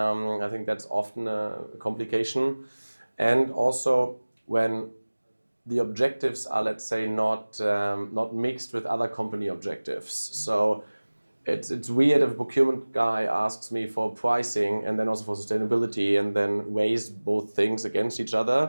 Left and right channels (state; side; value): inverted; both; correlation -1.00